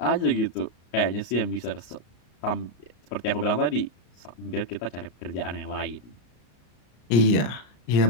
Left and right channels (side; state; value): right; late; 34 ms